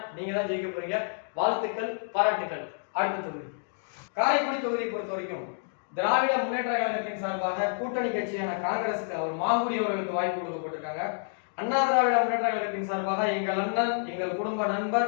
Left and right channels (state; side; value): silent; right; digital silence